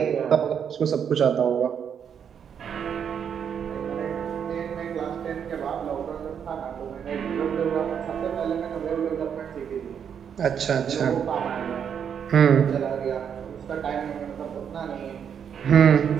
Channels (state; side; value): quieter; left; 7.9 dB